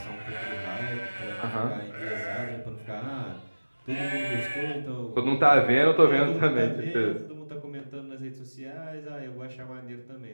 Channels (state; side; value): inverted; both; correlation -1.00